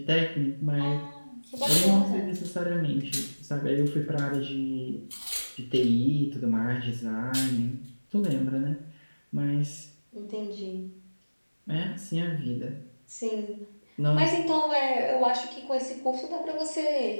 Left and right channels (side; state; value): both; inverted; correlation -1.00